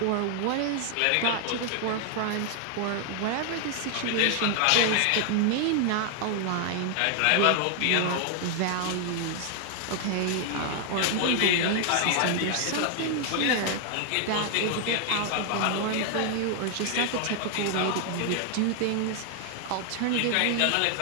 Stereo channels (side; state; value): both; different; correlation 0.00